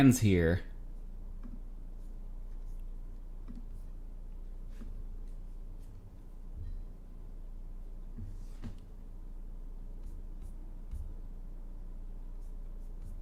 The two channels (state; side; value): identical; both; correlation 1.00